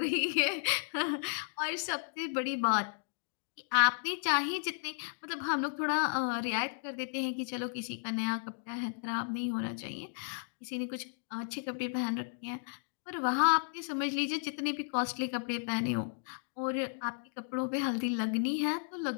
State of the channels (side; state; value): right; silent; digital silence